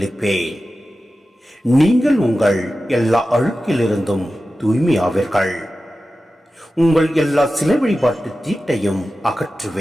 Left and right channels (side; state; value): both; normal; correlation 0.94